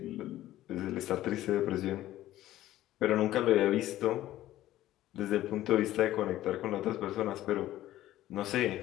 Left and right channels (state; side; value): quieter; right; 14.4 dB